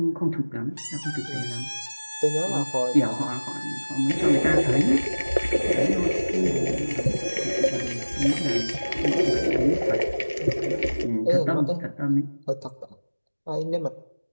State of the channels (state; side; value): inverted; both; correlation -1.00